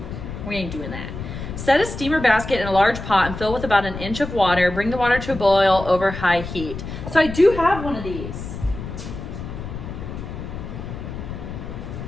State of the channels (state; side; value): noise; left; rumble, 8 dB below the sound